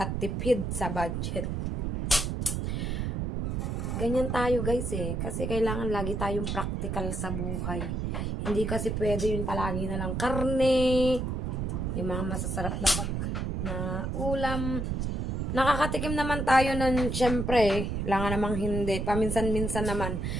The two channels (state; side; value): noise; right; rumble, 1 dB below the sound